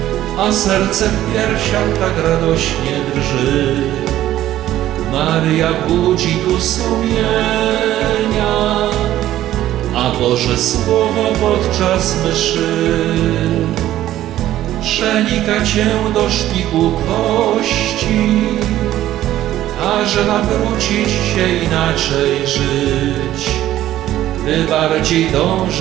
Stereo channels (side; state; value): left; quieter; 13.5 dB